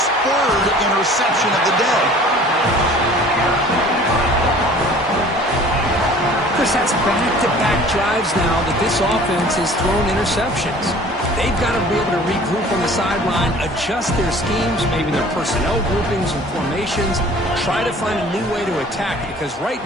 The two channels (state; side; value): normal; both; correlation 0.48